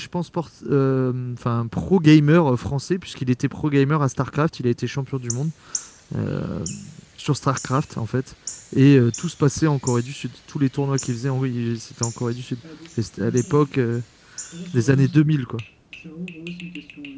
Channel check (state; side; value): identical; both; correlation 1.00